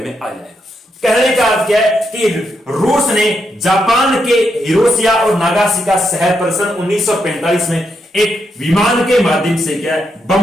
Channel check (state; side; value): normal; both; correlation 0.81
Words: में आ जाएगा। कहने का अर्थ क्या है कि रूस ने जापान के हिरोशिया और नागासाकी शहर पर सन 1945 में एक विमान के माध्यम से क्या